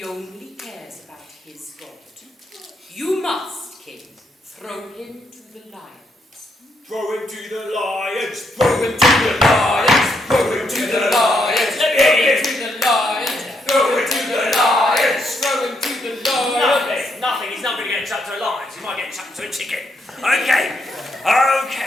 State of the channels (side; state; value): both; normal; correlation 0.77